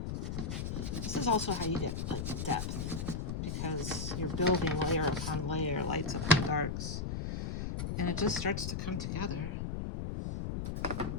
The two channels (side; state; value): left; noise; rumble, 3 dB below the sound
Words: this is also how you get like depth, because you're building layer upon layer, lights upon darks, and it just starts to come together